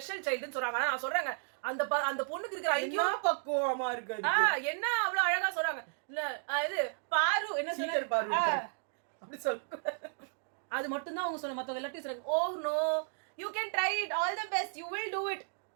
சைல்டுன்னு சொல்றாங்க, ஆனா நான் சொல்றேங்க அந்த பொண்ணுக்கு இருக்கிற ஐக்கியம் பக்குவமா இருக்கு, என்ன அவ்வளவு அழகா சொல்றாங்க, இல்ல இது பாரு என்ன சொல்றாரு அப்படி சொல்ல, அது மட்டும் தான் அவங்க சொன்ன, மத்தவங்க எல்லாத்தையும் சொல்றாங்க oh no you can try it all the best you will do it,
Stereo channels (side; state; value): left; silent; digital silence